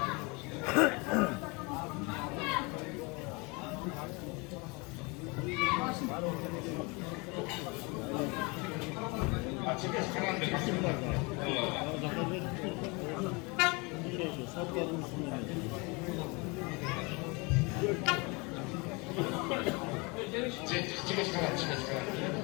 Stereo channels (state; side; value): quieter; right; 28.3 dB